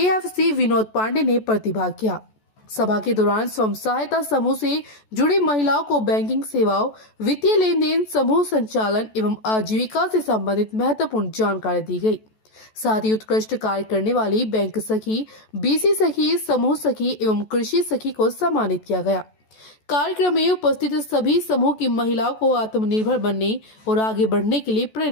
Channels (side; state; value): right; late; 14 ms